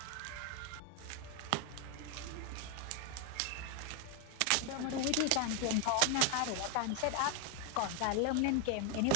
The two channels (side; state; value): both; different; correlation 0.01